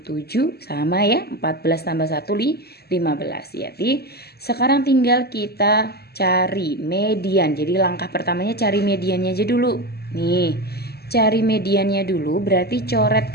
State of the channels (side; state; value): right; late; 0.46 ms